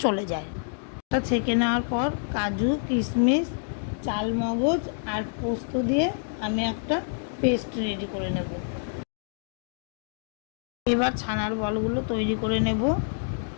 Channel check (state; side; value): silent; right; digital silence